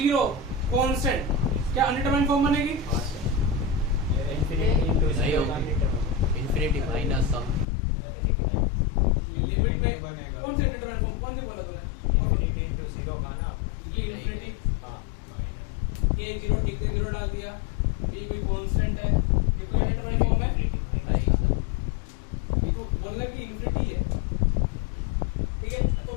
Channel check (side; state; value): right; drops out; at 7.7 s